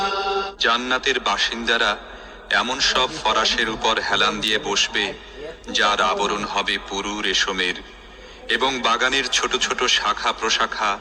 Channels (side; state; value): both; identical; correlation 1.00